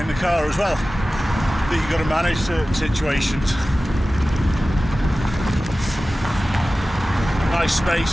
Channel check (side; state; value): both; normal; correlation 0.96